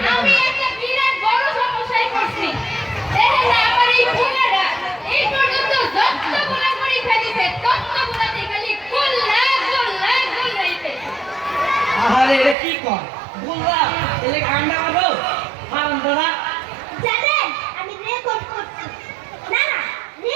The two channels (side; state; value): left; drops out; at 12.6 s